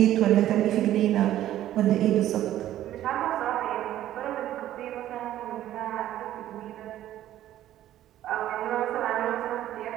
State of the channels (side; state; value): left; quieter; 12.9 dB